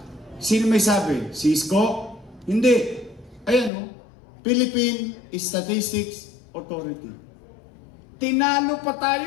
sino may sabi? Cisco? Hindi. Ayan, Philippine Statistics Authority. Tinalo pa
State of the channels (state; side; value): drops out; right; at 3.7 s